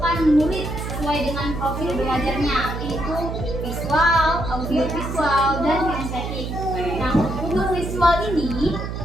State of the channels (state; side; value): noise; right; hum, 5 dB below the sound